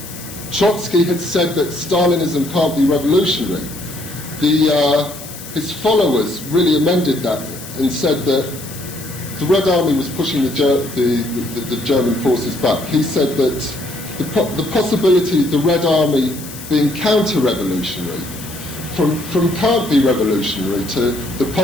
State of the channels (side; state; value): left; noise; hiss, 14 dB below the sound